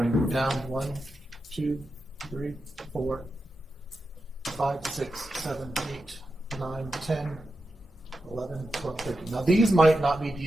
down 1, 2, 3, 4, 5, 6, 7, 8, 9, 10, 11, 12, 13. Now these might not be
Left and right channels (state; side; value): normal; both; correlation 0.89